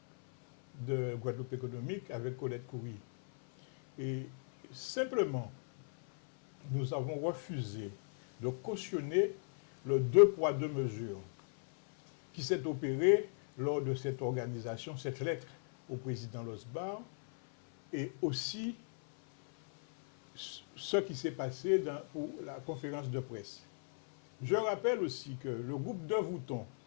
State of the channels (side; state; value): right; silent; 53 dB below the other